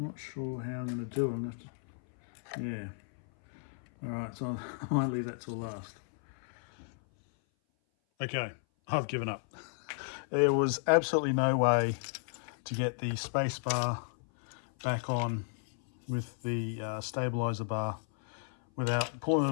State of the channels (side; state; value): right; silent; 56 dB below the other